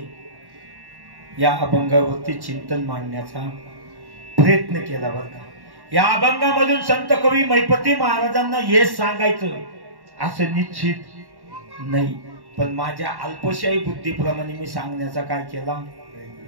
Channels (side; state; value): left; late; 1.1 ms